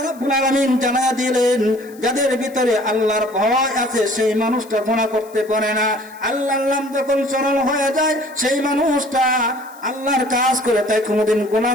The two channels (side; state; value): left; noise; hiss, 24 dB below the sound